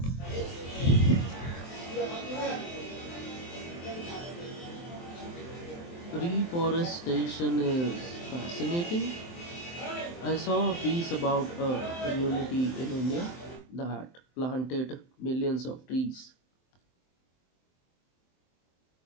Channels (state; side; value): late; right; 23 ms